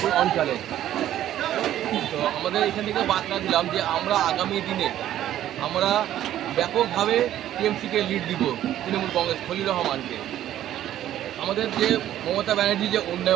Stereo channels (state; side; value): quieter; left; 12.3 dB